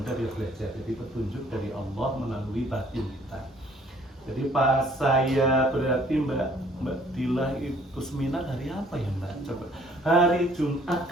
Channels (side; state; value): both; normal; correlation 0.59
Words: dia belajar. Jadi petunjuk dari Allah melalui batin kita. Jadi pas saya berarti Mbak Dila itu seminar hari apa ya Mbak? Coba hari Jumat